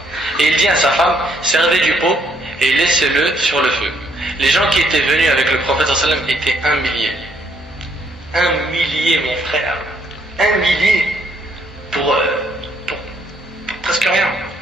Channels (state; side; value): normal; both; correlation 0.70